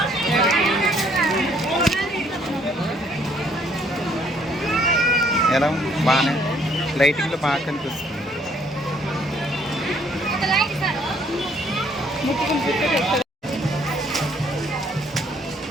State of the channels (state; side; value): normal; both; correlation 0.65